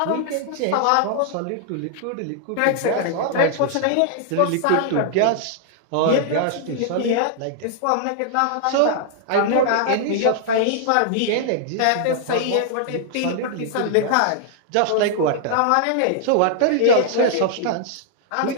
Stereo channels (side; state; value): both; different; correlation -0.01